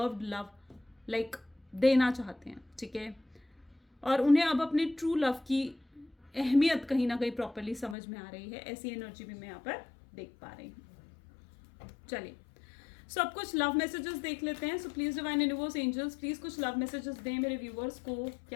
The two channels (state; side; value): drops out; right; at 8.0 s